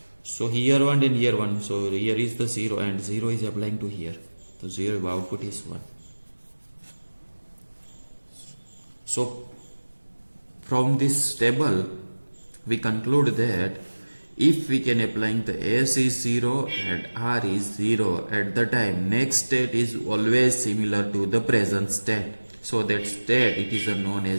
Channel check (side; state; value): both; inverted; correlation -1.00